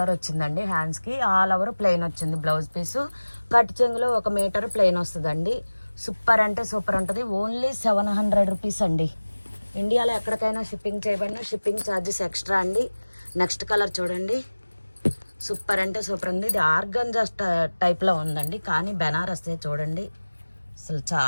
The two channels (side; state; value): both; inverted; correlation -1.00